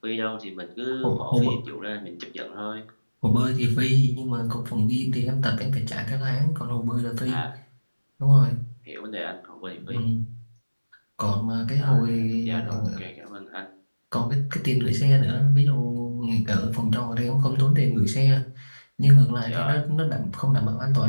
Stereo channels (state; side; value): inverted; both; correlation -1.00